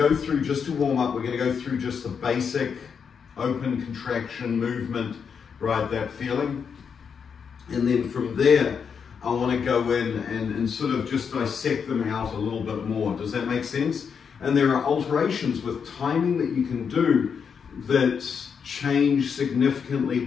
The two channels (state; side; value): quieter; right; 6.6 dB